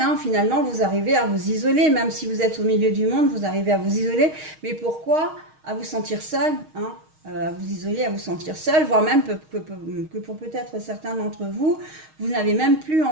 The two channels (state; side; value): late; left; 6.4 ms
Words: finalement vous arrivez à vous isoler, même si vous êtes au milieu du monde, vous arrivez à vous isoler, mais pourquoi à vous sentir seul, hein, à vous isoler, à vous sentir seul, voire même que pour peut-être certains d'entre vous, vous n'avez même plus